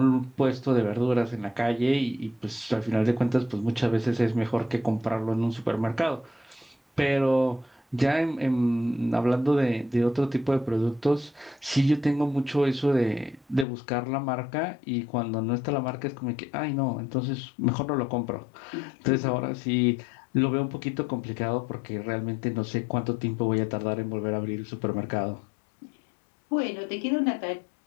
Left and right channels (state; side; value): drops out; right; at 13.7 s